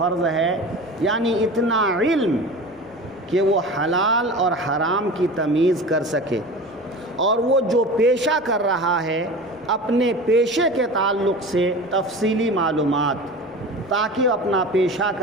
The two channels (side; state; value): left; noise; rumble, 30 dB below the sound